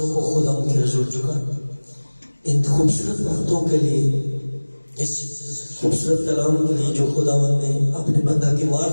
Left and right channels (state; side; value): inverted; both; correlation -1.00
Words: کو خدا کے حضور جھکائیں ان خوبصورت باتوں کے لیے، اس خوبصورت کلام کے لیے جو خداوند نے اپنے بندہ کی